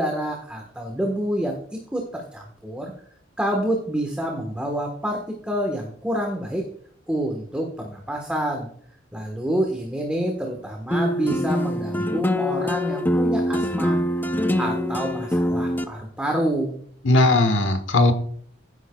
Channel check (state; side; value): normal; both; correlation 0.67